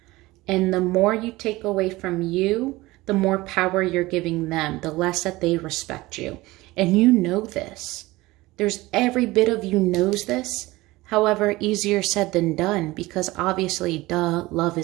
And the more you take away from you, the more power you're giving them, the less that they respect you. And you know this. There's every bit of you knows this. However, easier said than done, because obviously, duh, love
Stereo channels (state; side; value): quieter; left; 19.8 dB